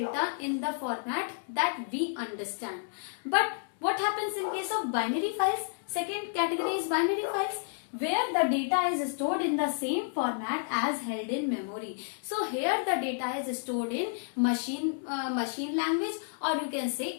in the format that we understand. But what happens in case of binary files? Second category is binary files, where the data is stored in the same format as held in memory. So here the data is stored in machine language, or you can say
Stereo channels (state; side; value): silent; right; digital silence